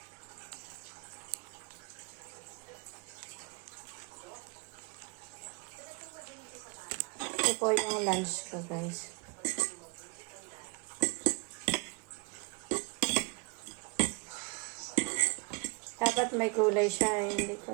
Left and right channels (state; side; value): quieter; left; 29.1 dB